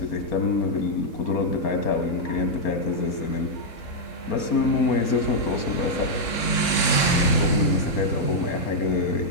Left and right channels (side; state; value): right; late; 3.3 ms